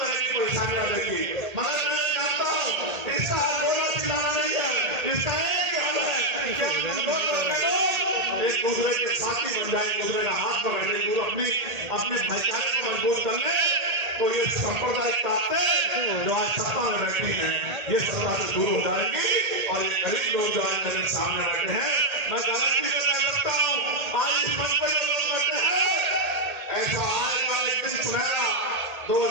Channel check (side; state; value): left; late; 1.8 ms